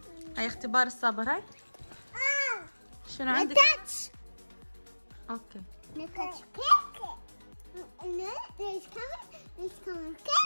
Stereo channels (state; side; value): inverted; both; correlation -1.00